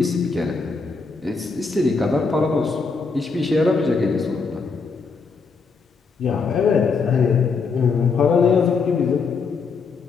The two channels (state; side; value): quieter; right; 4.8 dB